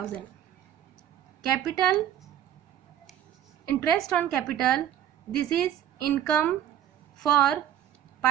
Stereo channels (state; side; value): quieter; left; 10.6 dB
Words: Capital, interest on capital, this is income for